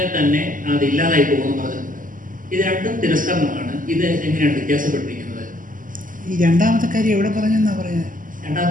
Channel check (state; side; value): late; left; 0.39 ms